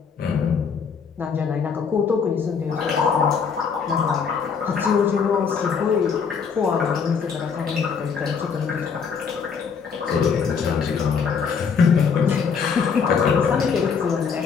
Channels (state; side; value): quieter; right; 6.1 dB